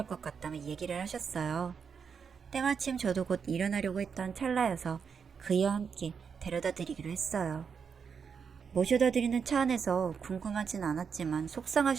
것 같다며 얘기를 하셨어요. 때마침 저도 곧 일어나려고 했던 찰나여서 그이와 함께 데려다 드리기로 했어요. 모셔다 드리는 차 안에서 궁금하진 않았지만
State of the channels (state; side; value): quieter; left; 6.4 dB